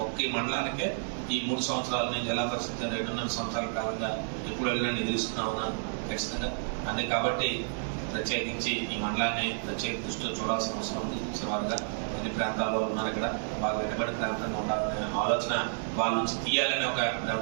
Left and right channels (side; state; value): left; silent; digital silence